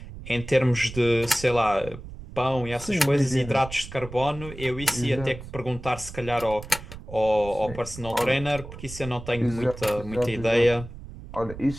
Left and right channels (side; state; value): right; noise; rumble, 13 dB below the sound